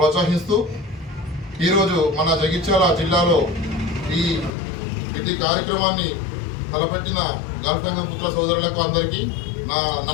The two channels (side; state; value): right; drops out; at 4.5 s